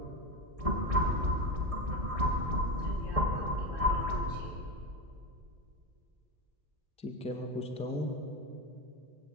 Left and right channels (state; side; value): late; left; 1.6 ms